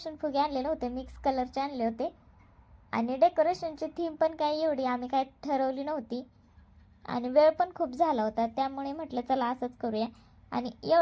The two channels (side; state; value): both; identical; correlation 1.00